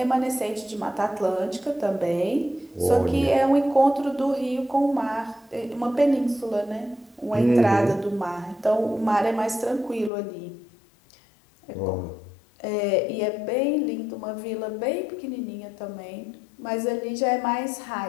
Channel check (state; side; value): drops out; right; at 10.1 s